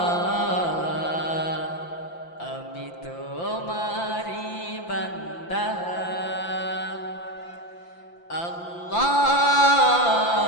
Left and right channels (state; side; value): late; right; 5.8 ms